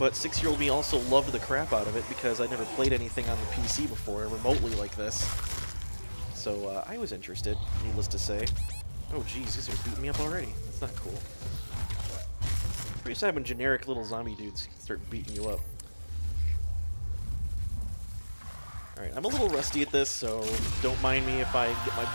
6-year-old me also loved the crap out of it because I'd never played anything on the PC before, remotely like this. So I was interested, needless to say. Oh jeez, these are beating me up already. That's not cool. Pretty sad when generic little zombie dudes start beating you up. Alright, I'm a little rusty at this, so don't mind me if I get my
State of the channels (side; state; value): both; inverted; correlation -1.00